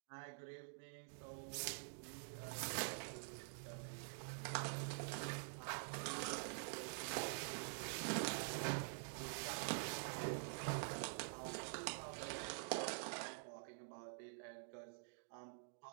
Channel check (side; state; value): left; silent; digital silence